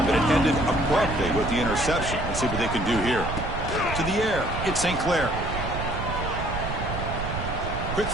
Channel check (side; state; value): right; noise; rumble, 5 dB below the sound